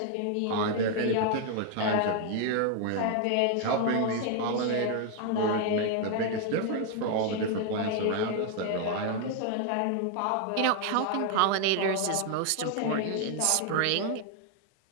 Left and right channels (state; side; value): different; both; correlation 0.00